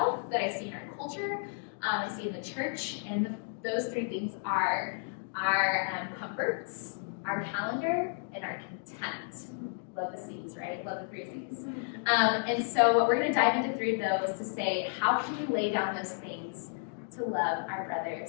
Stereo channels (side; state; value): right; silent; digital silence